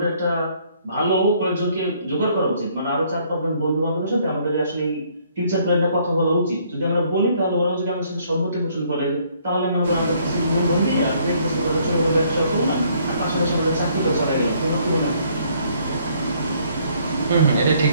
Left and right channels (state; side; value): inverted; both; correlation -0.65